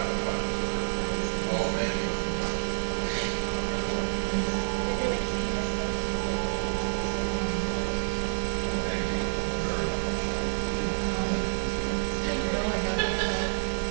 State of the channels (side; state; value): left; silent; digital silence